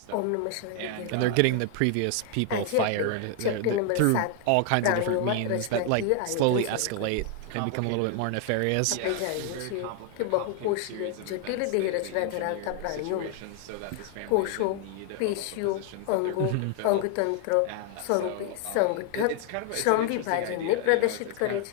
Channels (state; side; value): different; both; correlation 0.00